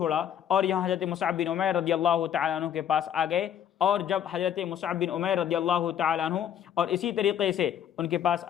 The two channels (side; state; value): right; quieter; 9.6 dB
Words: اور یہاں حضرت مصعب بن عمیر رضی اللہ تعالیٰ عنہ کے پاس آ گئے، اور جب حضرت مصعب بن عمیر رضی اللہ تعالیٰ عنہ اور اسی طریقے سے ان کے پاس